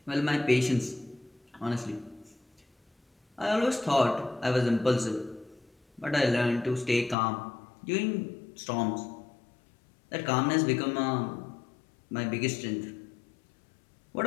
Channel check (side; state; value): right; drops out; at 7.2 s